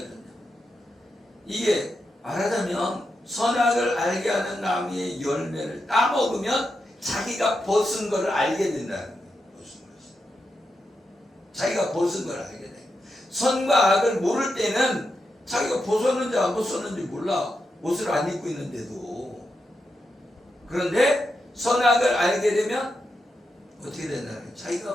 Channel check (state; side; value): normal; both; correlation 0.86